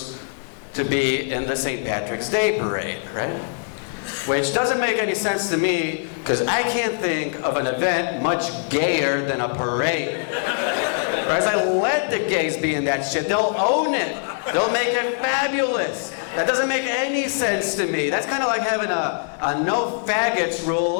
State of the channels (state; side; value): silent; right; 64 dB below the other